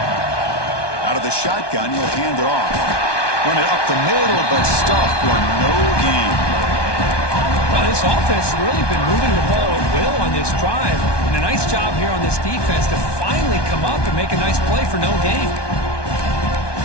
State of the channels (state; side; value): late; right; 1.2 ms